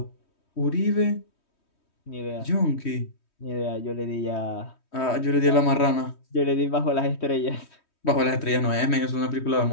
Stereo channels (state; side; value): late; right; 3.2 ms